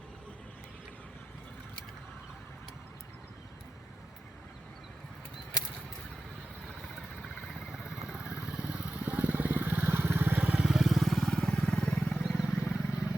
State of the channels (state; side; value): normal; both; correlation 0.93